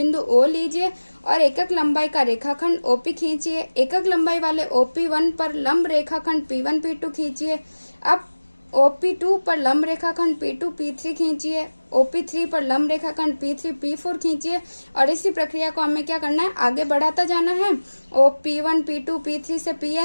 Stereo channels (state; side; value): inverted; both; correlation -1.00